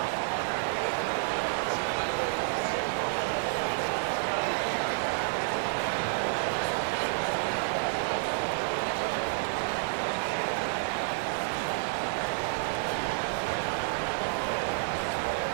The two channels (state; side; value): silent; left; 58 dB below the other